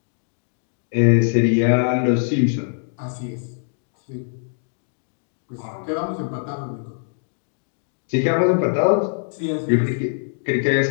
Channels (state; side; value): silent; right; digital silence